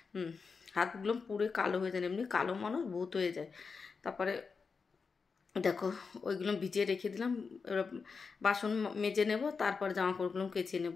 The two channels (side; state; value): right; quieter; 5.1 dB